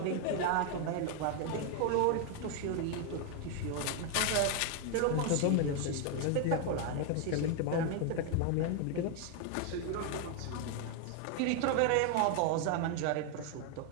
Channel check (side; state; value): both; different; correlation 0.01